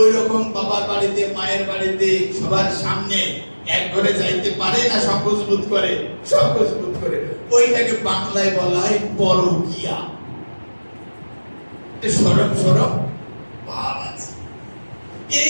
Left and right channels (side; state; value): both; inverted; correlation -1.00